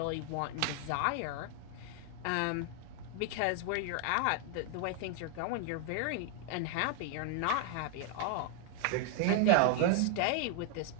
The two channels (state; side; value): different; both; correlation 0.00